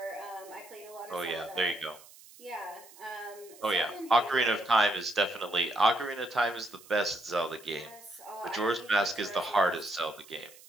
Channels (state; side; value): noise; right; hiss, 21 dB below the sound